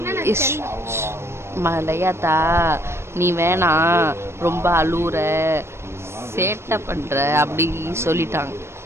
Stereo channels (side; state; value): left; late; 0.12 ms